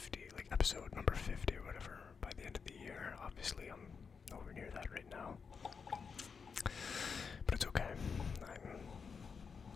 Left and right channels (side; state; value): right; quieter; 5.7 dB